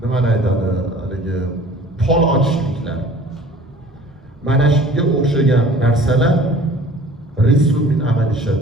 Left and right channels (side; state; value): both; normal; correlation 0.48